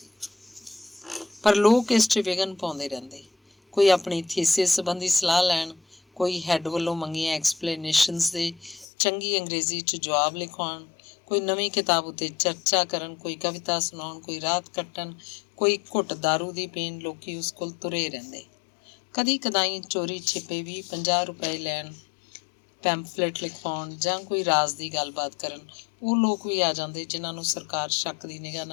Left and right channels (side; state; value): right; drops out; at 8.8 s